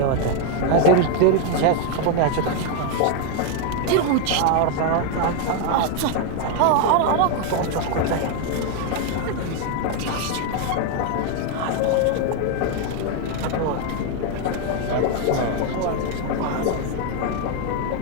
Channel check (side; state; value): both; different; correlation 0.01